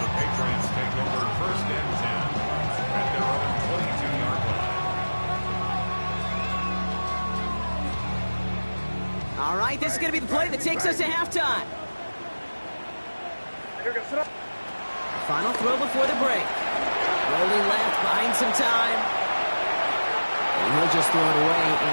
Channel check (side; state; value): both; inverted; correlation -1.00